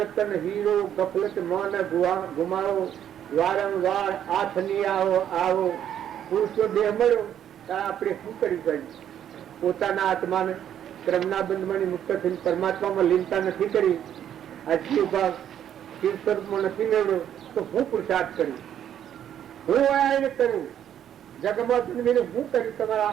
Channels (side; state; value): left; quieter; 10.1 dB